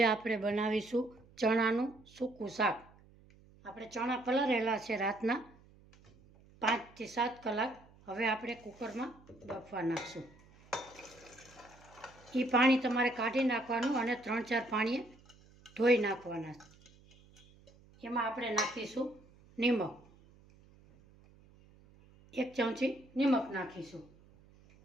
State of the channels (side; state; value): right; noise; hum, 26 dB below the sound